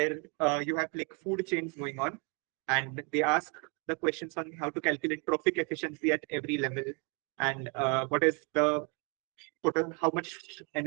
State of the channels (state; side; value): quieter; left; 34.0 dB